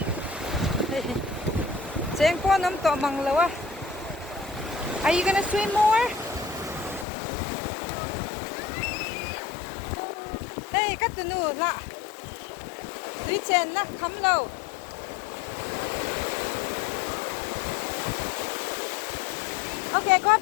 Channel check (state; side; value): drops out; right; at 7.1 s